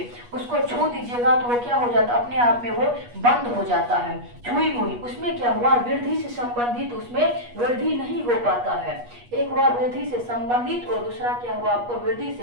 उसको छू दीजिएगा तो वो क्या हो जाता है, अपने आप में वो बंद हो जाता है। छुई मुई, उसमें क्या हुआ, वृद्धि से संबंधित, उसमें वृद्धि नहीं हो पाता है। एक हुआ वृद्धि से संबंधित और दूसरा क्या हुआ आपको, वृद्धि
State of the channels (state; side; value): late; left; 8.3 ms